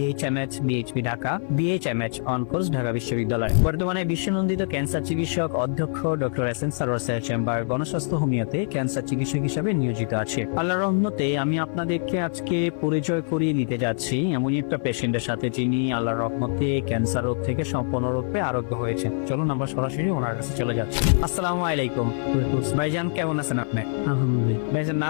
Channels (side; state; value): right; silent; 55 dB below the other